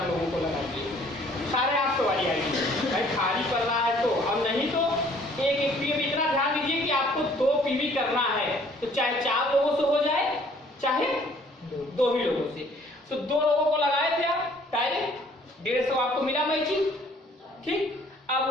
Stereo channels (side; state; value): both; normal; correlation 0.58